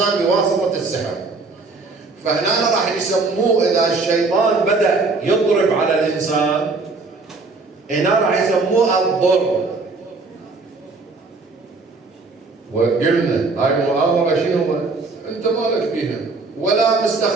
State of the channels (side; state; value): left; quieter; 3.8 dB